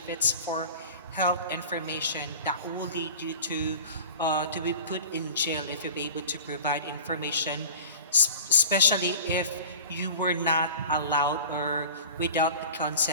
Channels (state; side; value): inverted; both; correlation -0.39